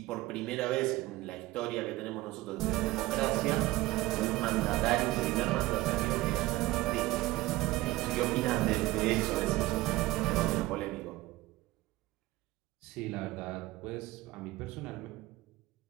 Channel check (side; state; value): left; quieter; 18.6 dB